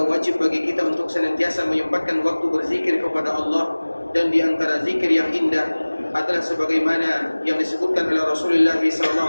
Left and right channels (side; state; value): both; inverted; correlation -1.00